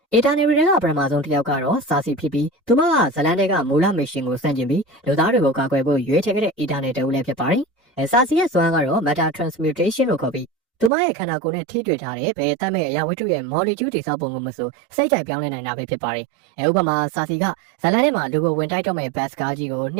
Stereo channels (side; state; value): left; drops out; at 10.9 s